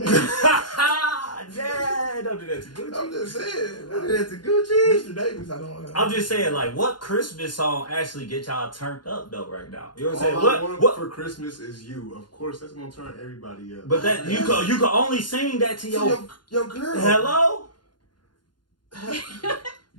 Dad, don't do that to Gucci. I'm just saying. Don't do that to Gucci. Mr. Davis, I don't know. I'm just saying, like, what Christmas song actually get y'all turned up though right now? You know what I'm saying? All I want What? for Christmas is you. Of course, that's gonna turn everybody up. But that you can only sing that to your girl. Hello.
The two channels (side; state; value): right; late; 0.71 ms